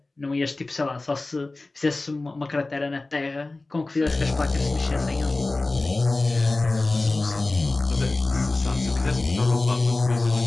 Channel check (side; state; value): right; quieter; 3.1 dB